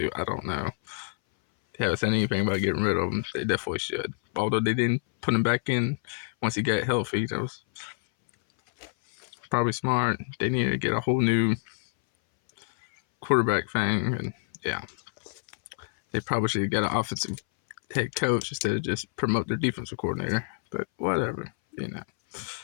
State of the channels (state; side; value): silent; right; 60 dB below the other